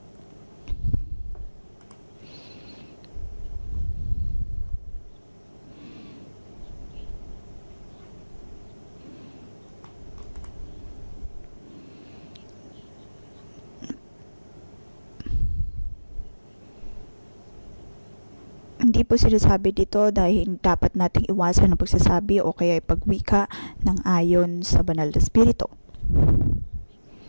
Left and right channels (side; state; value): both; inverted; correlation -1.00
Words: Hindi po sinasabi dito dahil dapat nating iwasan ang pagsasabi o kaya pagwika ng ayon sa banal na espiritu.